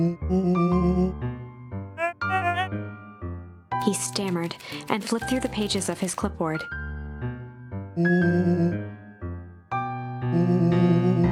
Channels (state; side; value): identical; both; correlation 1.00